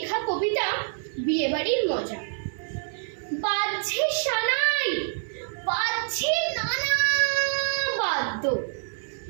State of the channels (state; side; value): silent; left; 57 dB below the other